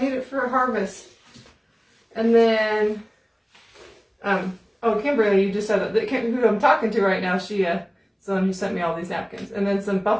it for a harvest. And then, oh, Kimberly, you just said who I'm talking to right now. She, so who sent me all these napkins, and then some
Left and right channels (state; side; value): identical; both; correlation 1.00